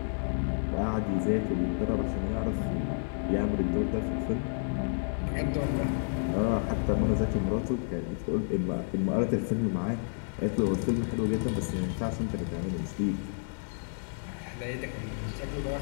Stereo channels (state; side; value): silent; right; 58 dB below the other